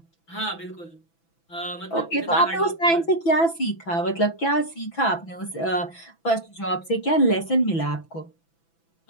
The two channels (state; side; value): late; right; 6.0 ms